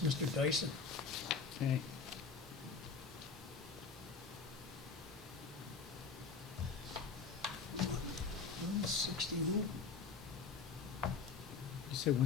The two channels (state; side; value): quieter; right; 5.0 dB